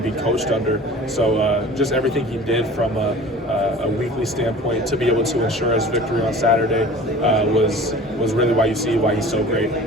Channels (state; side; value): normal; both; correlation 0.43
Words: be coached under. So just everything he did from a weekly standpoint to be able to ensure us victory on Saturday was really why he's so great.